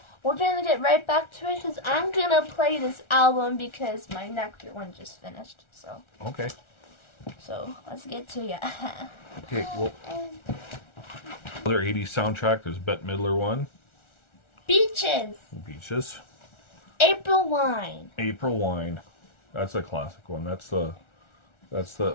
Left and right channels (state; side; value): late; right; 1.4 ms